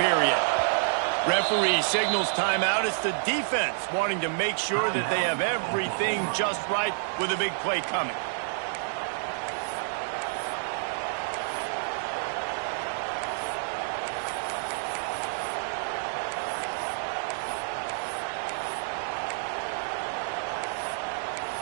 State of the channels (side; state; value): left; silent; digital silence